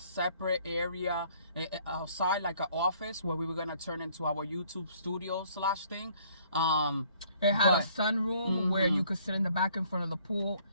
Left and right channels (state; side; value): inverted; both; correlation -0.61